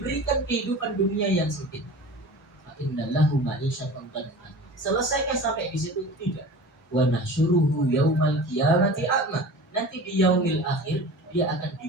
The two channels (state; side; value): normal; both; correlation 0.37